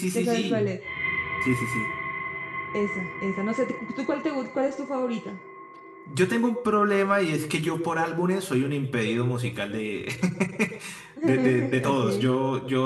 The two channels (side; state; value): both; identical; correlation 1.00